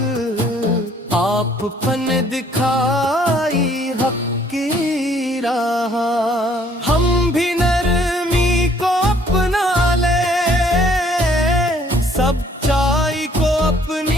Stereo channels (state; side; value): normal; both; correlation 0.62